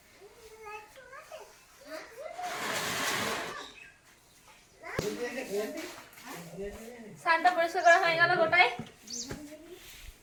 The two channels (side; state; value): both; identical; correlation 1.00